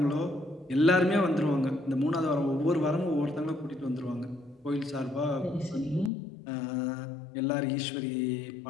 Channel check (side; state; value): right; drops out; at 6.1 s